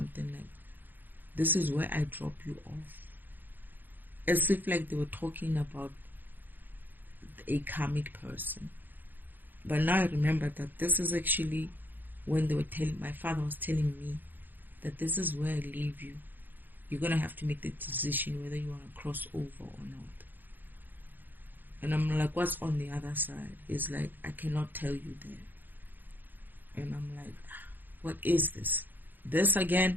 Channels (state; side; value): late; left; 0.089 ms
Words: like, this is where I drop you off. As if like they were talking about a karmic person. But now I remember that this is actually when they were telling, my father was telling me that this is where I leave you. You're going to have to make the decision whether you want to cross over or not. And I'm like, what's on the other side? It's like, I cannot tell you that. And I'm like, what is this? This